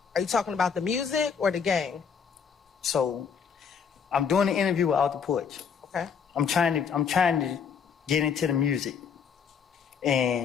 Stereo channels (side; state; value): right; quieter; 6.6 dB